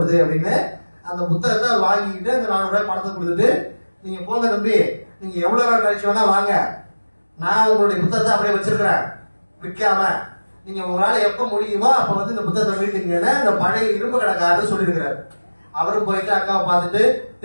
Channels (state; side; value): inverted; both; correlation -1.00